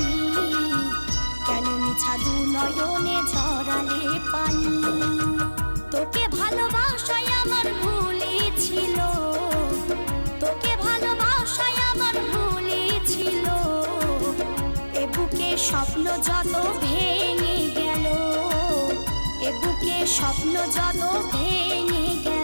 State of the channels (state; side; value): inverted; both; correlation -1.00